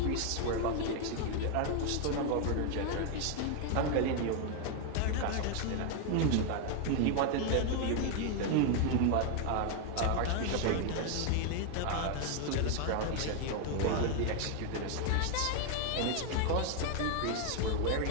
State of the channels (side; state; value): both; different; correlation 0.01